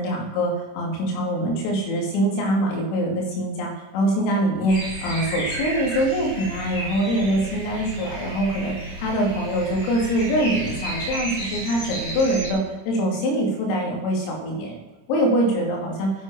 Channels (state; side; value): late; right; 26 ms